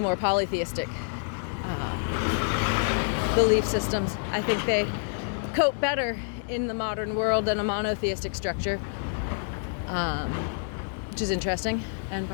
polytheistic belief systems. I think they cope better in the modern world than a monotheistic structure, which is interesting, and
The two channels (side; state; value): right; silent; digital silence